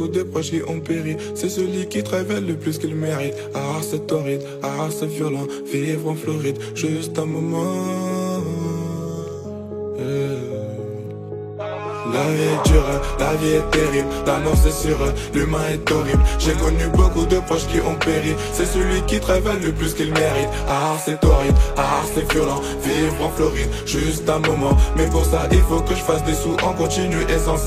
de proches qui ont péri, c'est celui qui travaille le plus qu'il mérite. Ah c'est torride, ah c'est violent, vivre en Floride, juste un moment. La vie est dure, la vie est terrible, la mort c'est sûr, l'humain est horrible. J'ai connu beaucoup de proches qui ont péri, c'est celui qui travaille le plus qu'il mérite. Ah c'est torride, ah c'est violent, vivre en Floride, juste un moment. Mais pour ça il faut que je fasse des sous en continu et sans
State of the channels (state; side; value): identical; both; correlation 1.00